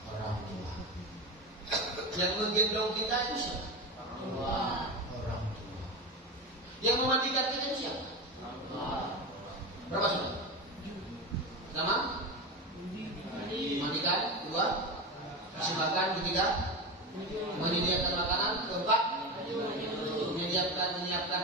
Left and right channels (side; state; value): both; normal; correlation 0.21